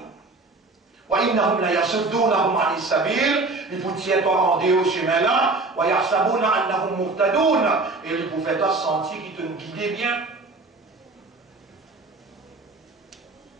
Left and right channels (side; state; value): left; quieter; 3.4 dB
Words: وإنهم ليصدونهم عن السبيل ils vous tiennent en au chemin là ويحسبون أنهم مهتدون et ils vous font sentir qu'ils te guident bien.